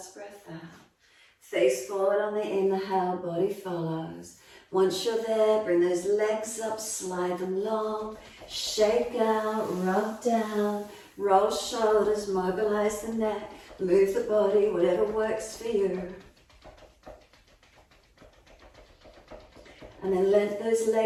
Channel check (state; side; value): identical; both; correlation 1.00